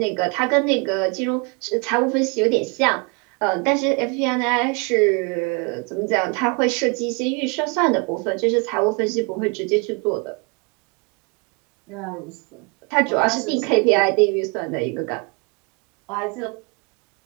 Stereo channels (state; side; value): quieter; left; 31.9 dB